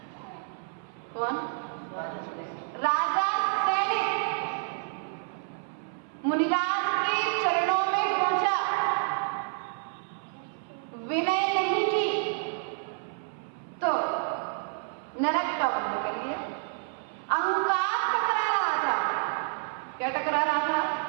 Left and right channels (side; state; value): left; silent; 56 dB below the other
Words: कौन, राजा सैनिक मुनिराज के चरणों में पहुंचा, विनय नहीं की तो नरक का बंध कर लिया। अहंकार टकरा रहा था, क्या टकरा रहा था,